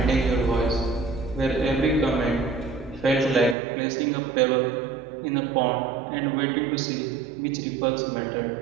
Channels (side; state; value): left; drops out; at 3.6 s